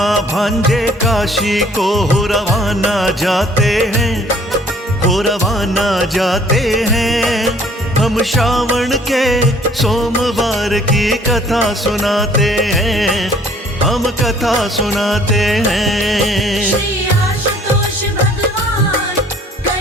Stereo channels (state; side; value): normal; both; correlation 0.57